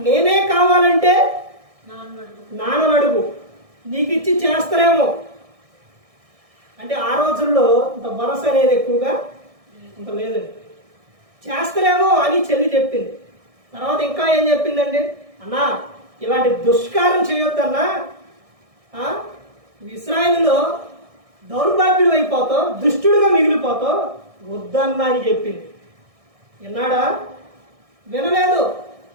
నేనే కావాలంటే నాన్న అడుగు, నీకు ఇచ్చి చేస్తారేమో. అంటే ఆ రోజుల్లో ఇంత భరోసా అనేది ఎక్కువగా ఇంత లేదండి. చేస్తారేమో అని చెల్లి చెప్పింది. తర్వాత ఇంకా ఏం చెప్పిందండి? అన్నా ఇలాంటి దుష్కారం చేయొద్దన్నా, ఇశ్రాయేలులో దౌర్భాగ్యుడు అయిపోతావు, దుష్టుడుగా మిగిలిపోతావు, వద్దన్నా అని చెప్పింది. విన్నాడా? వినలేదు.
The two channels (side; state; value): left; late; 1.6 ms